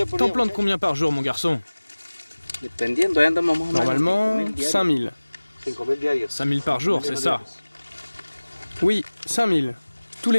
T'en plantes combien par jour, mon garçon? Normalement, 5000. 5000 par jour, c'est ça? Oui, 5000. Tous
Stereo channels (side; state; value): both; inverted; correlation -1.00